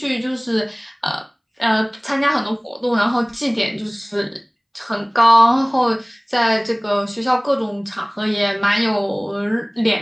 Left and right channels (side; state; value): both; identical; correlation 1.00